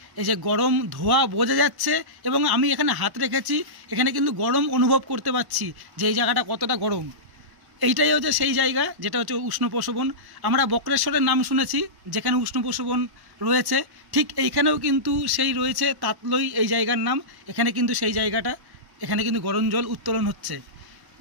এই যে গরম ধোঁয়া বোঝা যাচ্ছে এবং আমি এখানে হাত রেখেছি, এখানে কিন্তু গরম অনুভব করতে পারছি যে এই জায়গাটা কতটা গরম। এইটাই হচ্ছে সেই জায়গা যেটা হচ্ছে উষ্ণ প্রসবন। আমরা বক্রেশ্বরের নাম শুনেছি যেখানে উষ্ণ প্রসবন রয়েছে, ঠিক এইখানেও কিন্তু সেই রয়েছে তাতলই এই জায়গার নাম। এখানে কিন্তু সেই জায়গাটা, এখানে কিন্তু গরম জল উত্তোলন হচ্ছে।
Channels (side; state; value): left; late; 1.1 ms